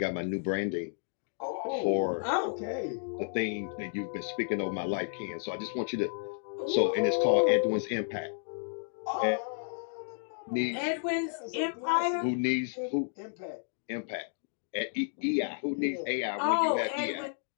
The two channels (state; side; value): silent; right; digital silence